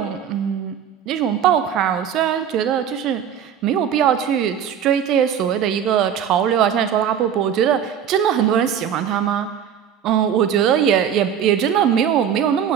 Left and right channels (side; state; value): left; quieter; 8.7 dB